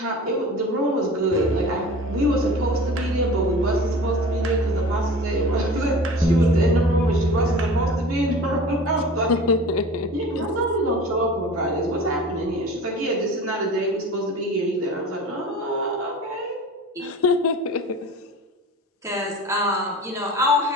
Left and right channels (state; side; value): normal; both; correlation 0.38